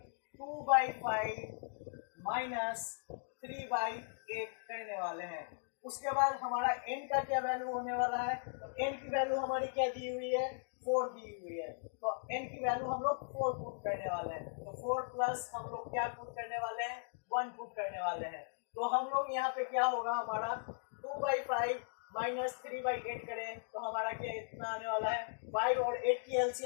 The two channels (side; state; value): right; silent; digital silence